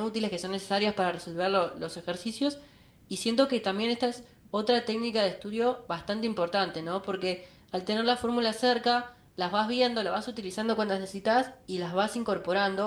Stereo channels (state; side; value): identical; both; correlation 1.00